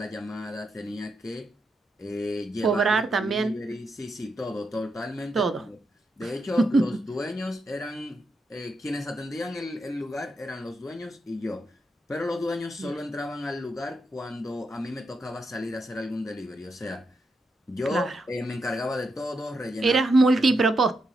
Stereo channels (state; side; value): normal; both; correlation 0.83